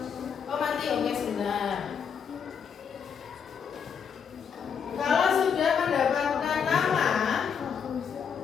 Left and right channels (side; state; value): right; quieter; 7.0 dB